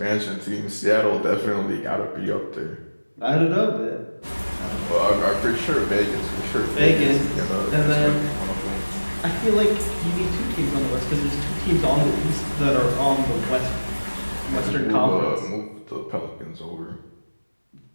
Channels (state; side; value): inverted; both; correlation -1.00